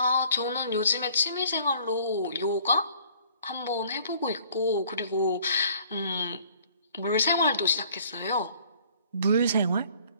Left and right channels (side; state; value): both; inverted; correlation -0.57